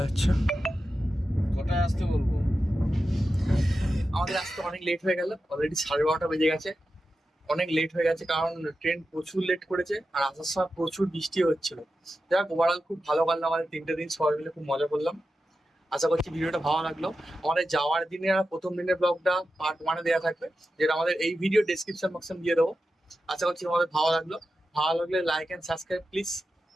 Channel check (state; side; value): normal; both; correlation 0.91